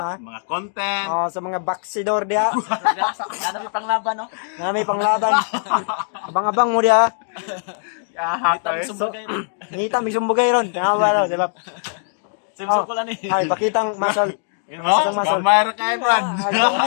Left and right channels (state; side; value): silent; right; digital silence